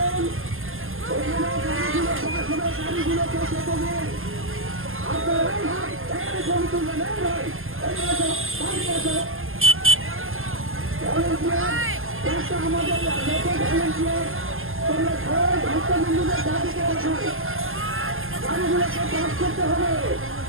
ওখানে গাড়িগুলো পাস হবে, গাড়িগুলোকে যেতে দিন। আপনারা এই ভাই এখানে ছবি তুলবেন, এই ভাই এখানে আসো, বাড়ি আসো। ভলেন্টিয়ার চেষ্টা আমাদের যত ভলেন্টিয়ার তোমরা সবাই ভক্তবৃন্দদের দাবিতে আসো, গাড়িগুলোকে পাস করতে হবে।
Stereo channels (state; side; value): late; left; 0.60 ms